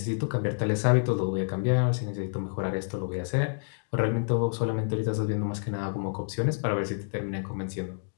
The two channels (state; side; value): silent; right; digital silence